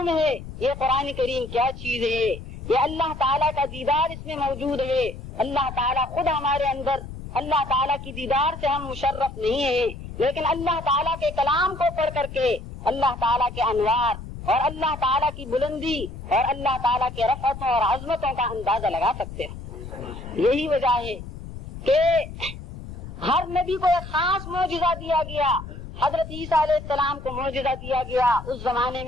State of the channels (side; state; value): left; noise; rumble, 12 dB below the sound